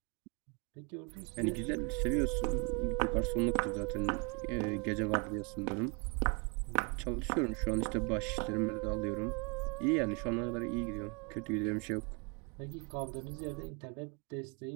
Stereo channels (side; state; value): left; quieter; 33.3 dB